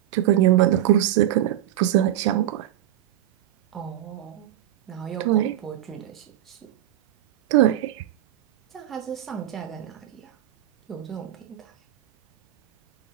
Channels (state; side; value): quieter; left; 12.5 dB